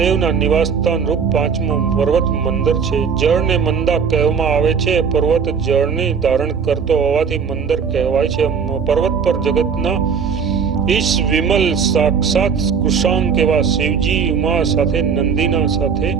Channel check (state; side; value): quieter; left; 6.3 dB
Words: નિવાસસ્થાન રૂપ 5મો પર્વત મંદર છે. જળને મંદા કહેવામાં આવે છે. પર્વત જળને ધારણ કરતો હોવાથી મંદર કહેવાય છે. પર્વત પર જગતના ઈશ વિમલ સાક્ષાત કુશાંક એવા શિવજી ઉમા સાથે નંદીના સાથે